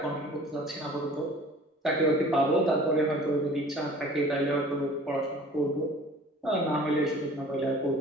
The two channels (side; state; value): both; normal; correlation 0.47